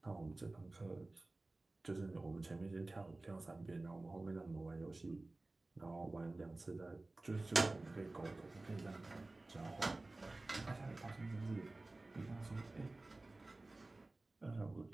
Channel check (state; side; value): quieter; left; 3.0 dB